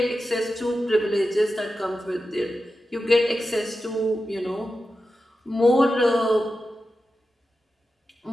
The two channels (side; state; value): both; normal; correlation 0.91